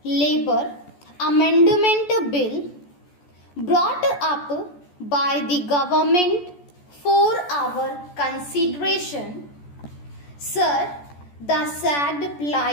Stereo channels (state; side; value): late; right; 14 ms